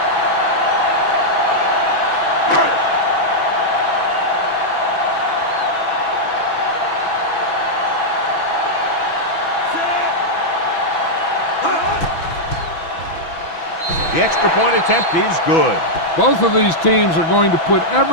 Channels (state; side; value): late; right; 6.1 ms